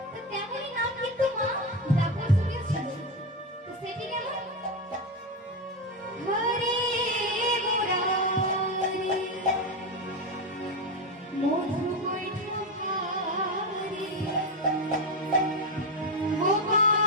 তো তেমনই নাম কিন্তু মা ডাকার যুগে ছিল। তো সেটি কেমন হরে মুরারি মধু বৈঠকারি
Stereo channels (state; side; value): normal; both; correlation 0.12